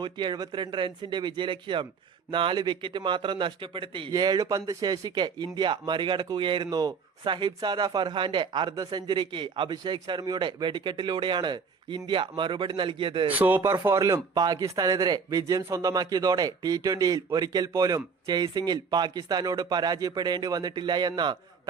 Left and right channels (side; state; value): left; quieter; 5.6 dB